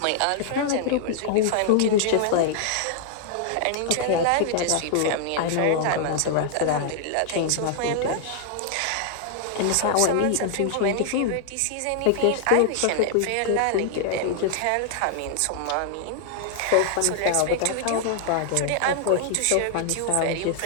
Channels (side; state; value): both; different; correlation -0.01